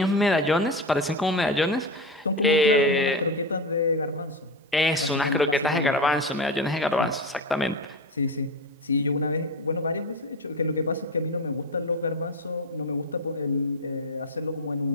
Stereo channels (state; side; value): normal; both; correlation 0.20